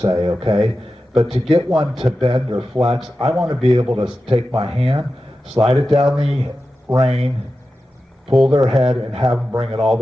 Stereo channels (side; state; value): both; normal; correlation 0.92